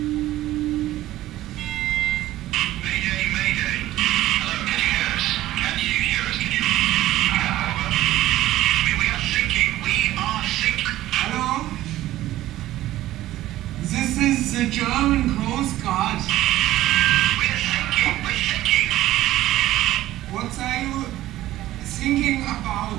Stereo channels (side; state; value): left; quieter; 15.0 dB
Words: Mayday, mayday. Hello, can you hear us? Can you hear us? Can you? Over. We are sinking. We are sinking. Hello? This is the German Coast Guard. We're sinking. We're sinking. What are you thinking about?